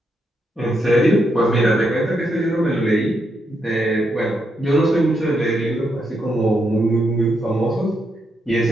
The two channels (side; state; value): both; normal; correlation 0.80